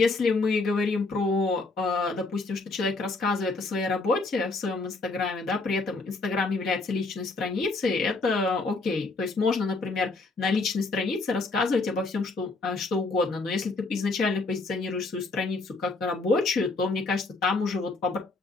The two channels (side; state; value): right; quieter; 3.6 dB